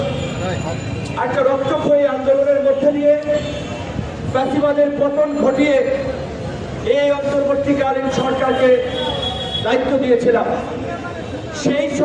একটা রক্তক্ষয়ী আন্দোলনের মধ্যে দিয়ে ফ্যাসিবাদের পতন ঘটিয়ে এই অন্তর্বর্তীকালীন সরকারকে দায়িত্ব দিয়েছিলাম। সেই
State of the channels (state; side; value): identical; both; correlation 1.00